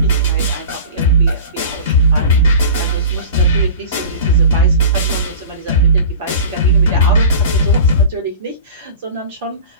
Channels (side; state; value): both; inverted; correlation -0.36